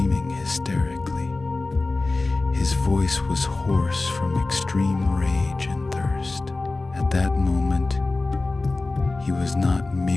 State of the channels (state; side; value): quieter; right; 3.3 dB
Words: hysterically. His voice was hoarse from extreme rage and thirst. At that moment, he was not